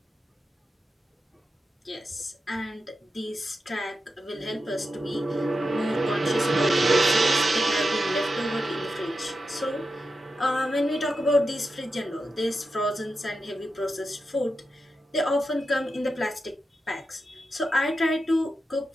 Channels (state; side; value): normal; both; correlation 0.89